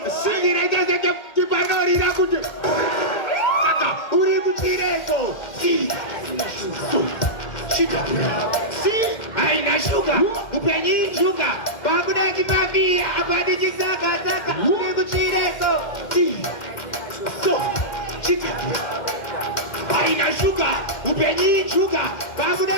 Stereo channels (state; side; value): late; right; 2.1 ms